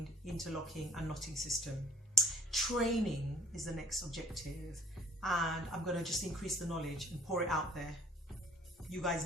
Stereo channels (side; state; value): both; normal; correlation 0.56